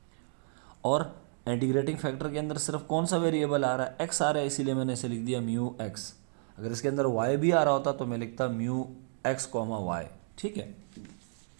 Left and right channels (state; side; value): silent; left; digital silence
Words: और इंटीग्रेटिंग फैक्टर के अंदर सिर्फ कौन सा वेरिएबल आ रहा है, x आ रहा है, इसीलिए मैंने इसे लिख दिया म्यू x। अगर इसके अंदर y भी आ रहा होता तो मैं लिखता म्यू x, y। ठीक है,